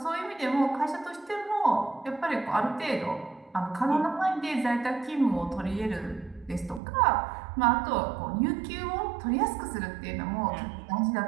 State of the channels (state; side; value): drops out; left; at 6.8 s